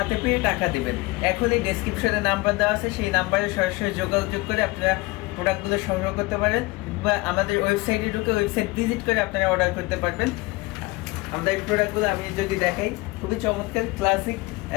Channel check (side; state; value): right; quieter; 22.5 dB